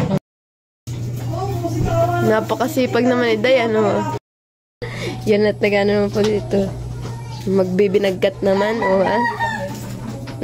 Napakasipag naman ni Day, ano? Yan at nag-ano naman po dito. Magbibinagkat naman, ha?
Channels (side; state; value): both; identical; correlation 1.00